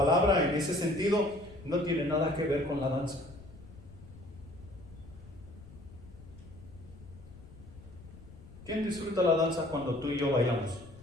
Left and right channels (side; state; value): left; noise; rumble, 18 dB below the sound